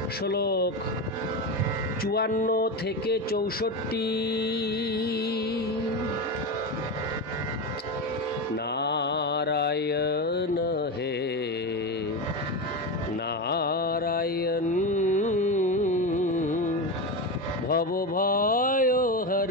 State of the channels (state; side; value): normal; both; correlation 0.18